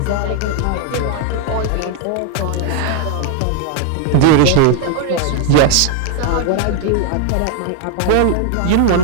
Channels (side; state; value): both; different; correlation 0.00